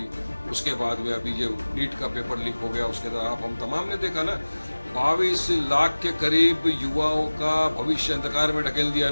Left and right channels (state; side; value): inverted; both; correlation -1.00